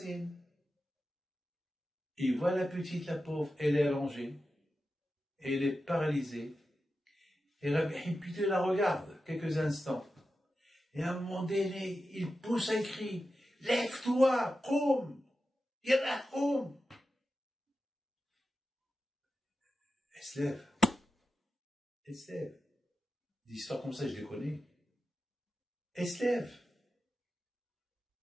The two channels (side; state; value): both; normal; correlation 0.92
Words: il voit la petite, la pauvre, elle est allongée, elle est paralysée, et Rabbi Haim Pido la regarde quelques instants, et à un moment donné, il pousse un cri, lève-toi, koum, yallah, koum. Elle se lève. Elle se lève. Des histoires comme ça, je les connais. Elle se lève.